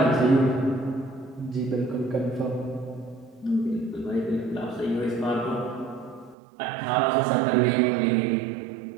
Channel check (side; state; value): left; drops out; at 6.4 s